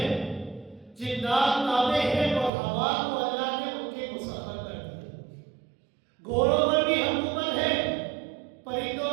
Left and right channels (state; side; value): drops out; left; at 2.5 s